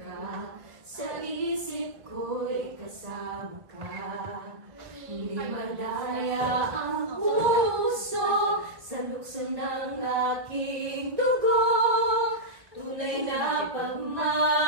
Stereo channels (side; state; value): left; late; 1.1 ms